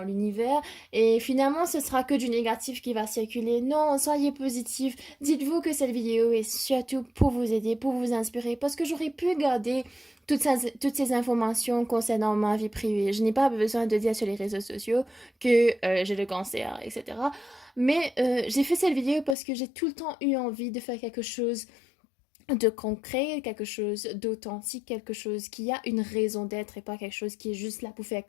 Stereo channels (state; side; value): drops out; right; at 19.4 s